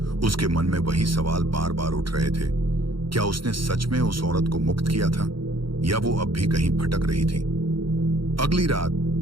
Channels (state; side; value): late; left; 0.73 ms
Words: उसके मन में वही सवाल बार बार उठ रहे थे। क्या उसने सच में उस औरत को मुक्त किया था, या वो अब भी कहीं भटक रही थी? अगली रात